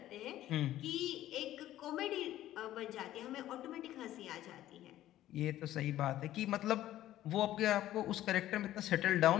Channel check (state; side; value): quieter; right; 13.7 dB